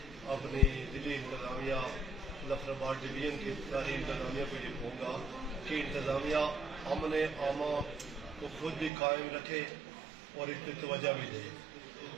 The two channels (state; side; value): drops out; left; at 8.9 s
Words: اپنی ضلعی انتظامیہ ظفر آباد ڈویژن کی ساری انتظامیہ کو یہ کہوں گا کہ انتظامیہ امن عامہ کو خود بھی قائم رکھے اور اس پہ توجہ بھی دے،